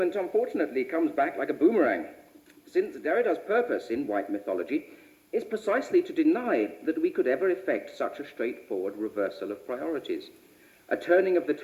unfortunately, comes back like a boomerang, since Derrida's purpose in white mythology is precisely to deny that we could ever effect such a straightforward reversal of priorities, a turning of the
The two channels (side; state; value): both; identical; correlation 1.00